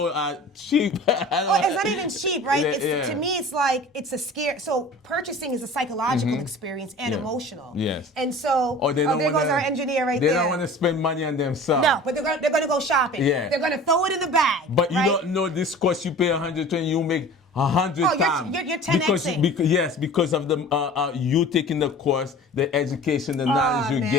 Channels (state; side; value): normal; both; correlation 0.41